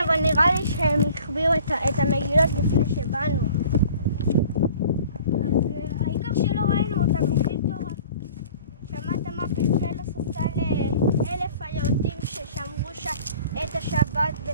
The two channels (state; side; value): inverted; both; correlation -0.48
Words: אבל נראה לי שהם החביאו את המגילות לפני שבאנו. אז העיקר שלא ראינו אותם, לומדים תורה. שמעת מה פסלוס עשה ל1,000 היהודים ששמרו את השבת